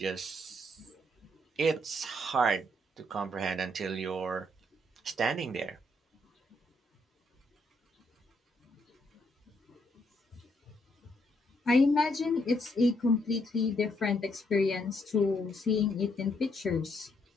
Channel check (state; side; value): normal; both; correlation 0.74